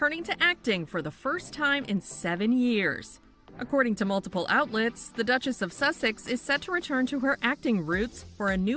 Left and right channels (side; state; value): both; identical; correlation 1.00